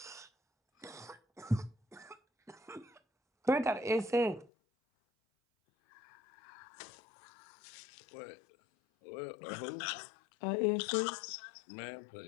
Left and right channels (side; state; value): right; drops out; at 4.5 s